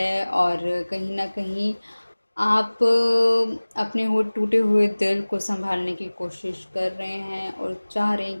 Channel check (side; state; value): both; inverted; correlation -1.00